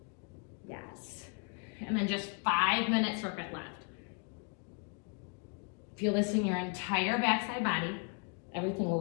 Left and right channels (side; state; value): right; quieter; 38.9 dB